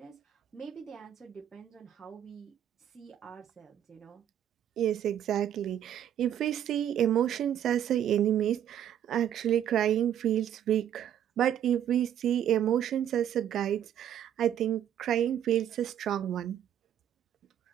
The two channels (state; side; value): quieter; left; 10.2 dB